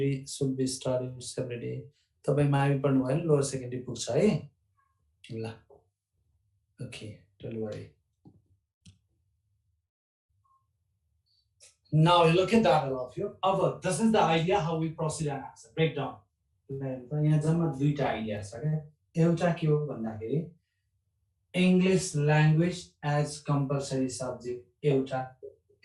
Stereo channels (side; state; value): both; identical; correlation 1.00